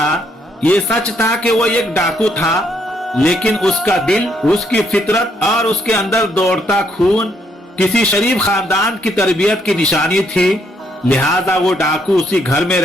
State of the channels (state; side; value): normal; both; correlation 0.72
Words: ये सच था कि वो एक डाकू था, लेकिन उसका दिल, उसकी फितरत और उसके अंदर दौड़ता खून किसी शरीफ खानदान की तरबियत की निशानी थी। लिहाजा वो डाकू उसी घर में